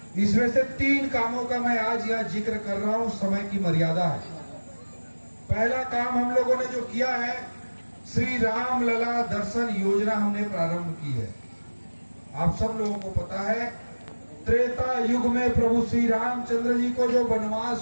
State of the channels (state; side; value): inverted; both; correlation -1.00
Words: इसमें से 3 कामों का मैं आज यहाँ जिक्र कर रहा हूं, समय की मर्यादा है। पहला काम हम लोगों ने जो किया है, श्री राम लला दर्शन योजना हमने प्रारंभ की है। आप सब लोगों को पता है त्रेता युग में प्रभु श्री रामचंद्र जी को जो